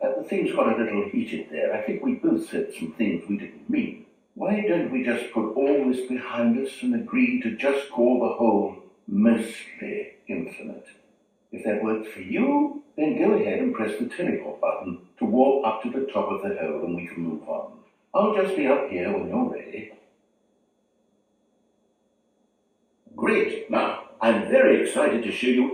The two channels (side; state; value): both; identical; correlation 1.00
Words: things got a little heated there. I think we both said some things we didn't mean. Why don't we just put all this behind us and agree to just call the hole mostly infinite? If that works for you, then go ahead and press the teleport button to walk up to the top of the hole and we can move on. I'll just be up here when you're ready. Great. Now, I'm very excited to show